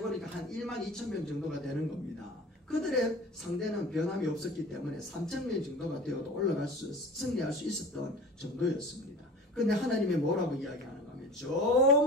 보니까 한 1만 2천 명 정도가 되는 겁니다. 그들의 상대는 변함이 없었기 때문에 3천 명 정도가 되어도 승리할 수 있었던 정도였습니다. 그런데 하나님이 뭐라고 이야기하는가 하면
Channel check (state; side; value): normal; both; correlation 0.39